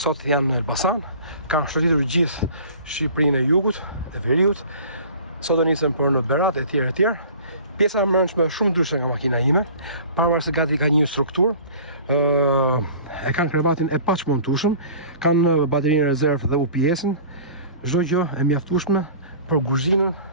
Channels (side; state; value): both; inverted; correlation -0.44